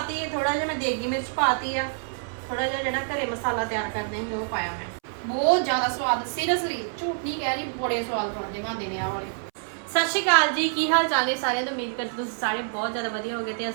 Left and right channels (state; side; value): silent; left; 61 dB below the other